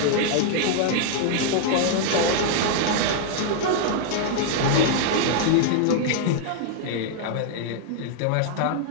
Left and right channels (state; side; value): different; both; correlation -0.01